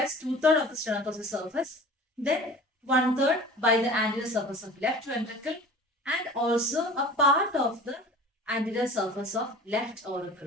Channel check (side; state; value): both; normal; correlation 0.41